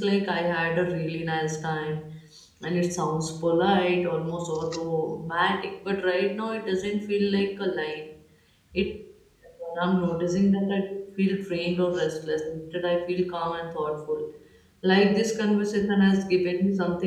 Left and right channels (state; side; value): identical; both; correlation 1.00